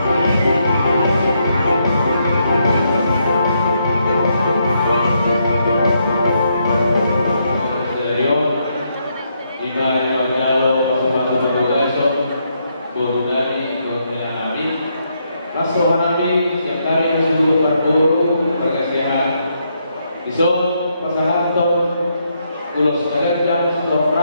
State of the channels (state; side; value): inverted; both; correlation -0.77